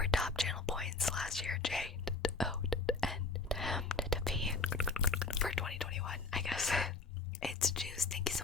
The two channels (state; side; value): quieter; right; 3.9 dB